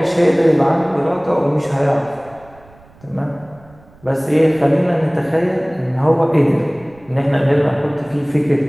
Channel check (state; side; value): noise; right; rumble, 27 dB below the sound